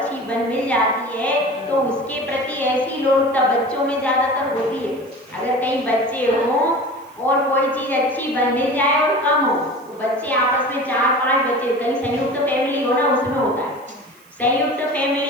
मिल जाती है तो उसके प्रति ऐसी लोलुपता बच्चों में ज्यादातर होती है। अगर कहीं बच्चे हों और कोई चीज अच्छी मिल जाए और कम हो, तो बच्चे आपस में 4-5 बच्चे, कहीं संयुक्त फैमिली हो ना, उसमें होता है, संयुक्त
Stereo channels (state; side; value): noise; right; hiss, 29 dB below the sound